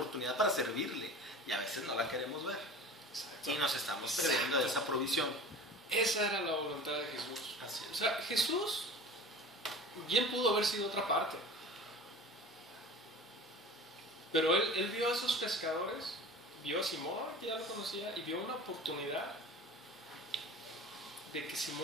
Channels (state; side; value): normal; both; correlation 0.38